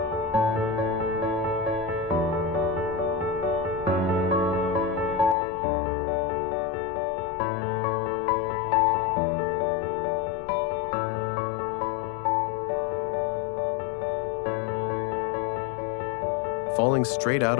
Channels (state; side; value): drops out; right; at 5.4 s